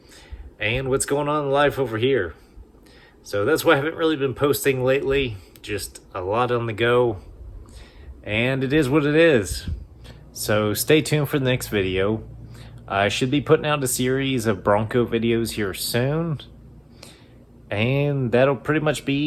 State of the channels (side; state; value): both; identical; correlation 1.00